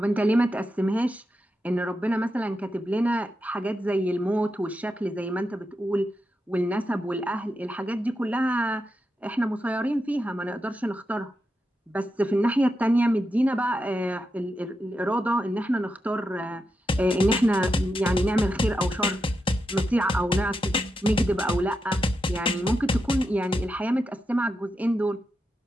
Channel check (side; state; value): both; normal; correlation 0.87